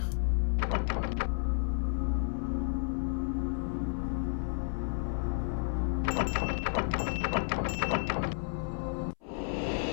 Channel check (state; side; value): silent; right; 56 dB below the other